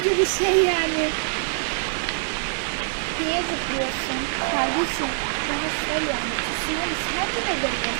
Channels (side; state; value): left; silent; 59 dB below the other